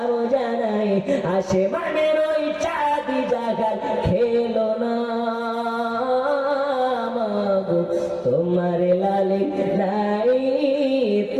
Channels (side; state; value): both; identical; correlation 1.00